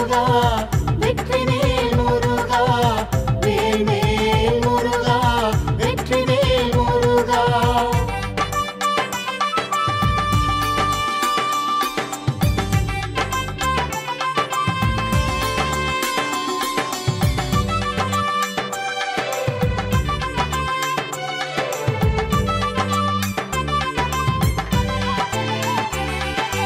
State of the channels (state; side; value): identical; both; correlation 1.00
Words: வெற்றிவேல் முருகா வேல்வேல் முருகா வெற்றிவேல் முருகா.